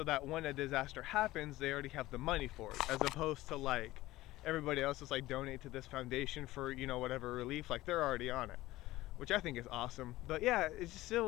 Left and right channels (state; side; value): quieter; right; 17.3 dB